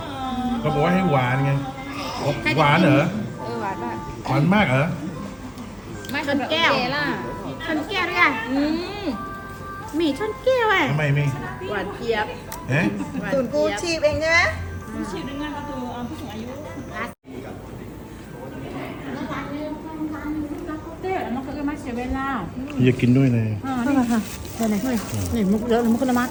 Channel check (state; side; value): identical; both; correlation 1.00